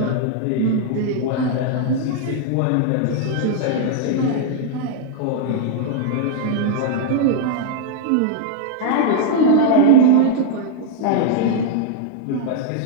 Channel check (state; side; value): different; both; correlation -0.01